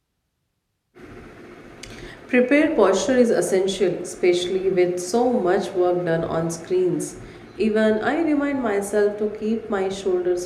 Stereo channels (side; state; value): both; identical; correlation 1.00